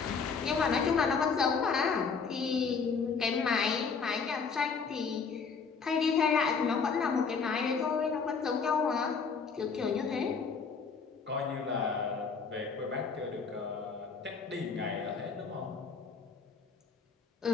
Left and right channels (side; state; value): right; quieter; 5.4 dB